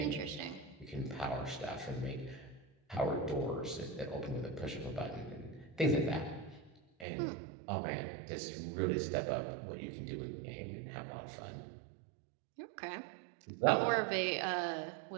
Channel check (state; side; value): drops out; left; at 7.1 s